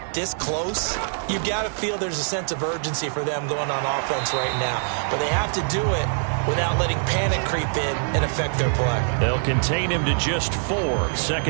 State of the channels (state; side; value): silent; left; digital silence